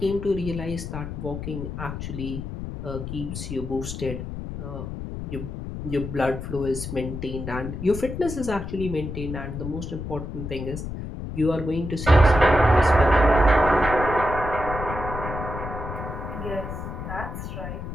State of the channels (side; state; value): left; noise; rumble, 7 dB below the sound